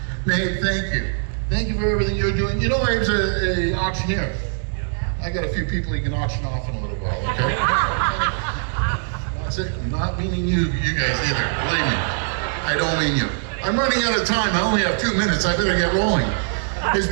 Nate, thank you. Thank you for everything you're doing. You know, I was an auctioneer. I got a few people you can auction off in a little while, okay? That's it. I'm not meaning you guys either. Believe me. I don't mean you. I'm running out of time. I only have 2 minutes. I better get rolling. It's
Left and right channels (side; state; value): left; silent; digital silence